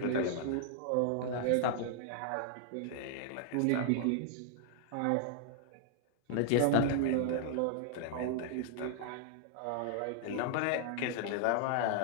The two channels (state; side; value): different; both; correlation -0.01